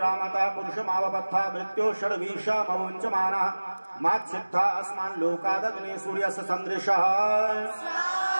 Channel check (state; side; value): inverted; both; correlation -1.00